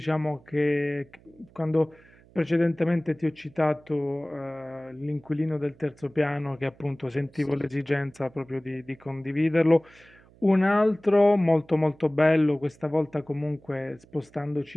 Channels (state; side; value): noise; right; hum, 27 dB below the sound